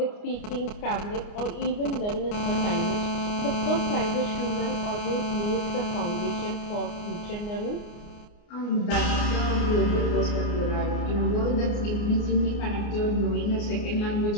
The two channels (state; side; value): late; right; 29 ms